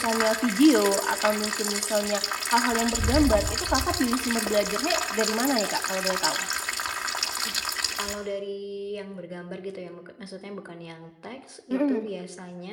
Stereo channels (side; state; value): both; identical; correlation 1.00